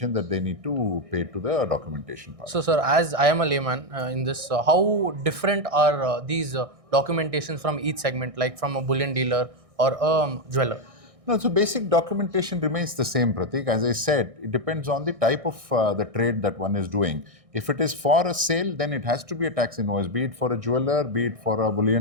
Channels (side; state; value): left; late; 1.6 ms